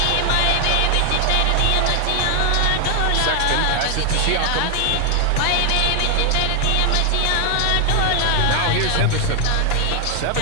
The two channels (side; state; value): both; different; correlation 0.00